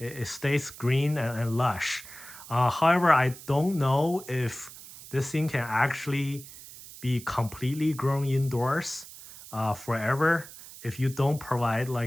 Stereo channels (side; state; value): right; noise; hiss, 16 dB below the sound